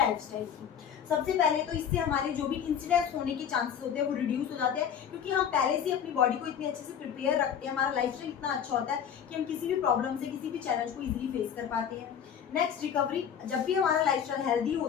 की, सबसे पहले तो इससे हमारे जो भी इंसिडेंट्स होने के चांसेस होते हैं वो रिड्यूस हो जाते हैं, क्योंकि हम पहले से अपनी बॉडी को इतनी अच्छे से प्रिपेयर रखते हैं, हमारा लाइफस्टाइल इतना अच्छा होता है कि हम किसी भी प्रॉब्लम से, किसी भी चैलेंज को इजीली फेस कर पाते हैं। नेक्स्ट रिकवरी, जब भी हमारा लाइफस्टाइल हेल्दी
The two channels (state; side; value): quieter; right; 8.3 dB